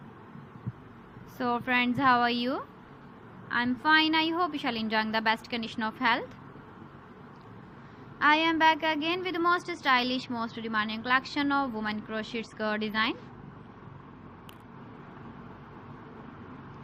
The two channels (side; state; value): both; identical; correlation 1.00